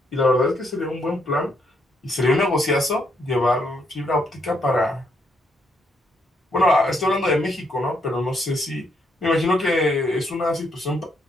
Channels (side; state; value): both; normal; correlation 0.75